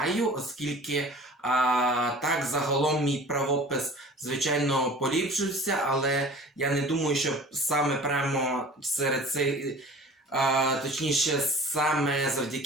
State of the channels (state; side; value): normal; both; correlation 0.43